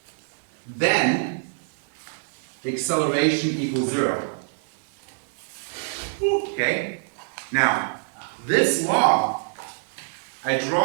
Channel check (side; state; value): left; silent; 62 dB below the other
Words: then acceleration equals 0. Okay? Now, this law, I